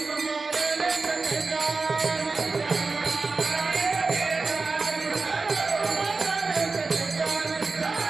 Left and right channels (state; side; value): quieter; left; 4.0 dB